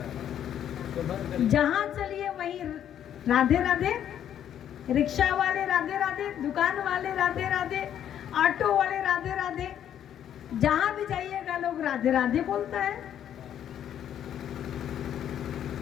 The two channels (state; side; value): quieter; right; 10.0 dB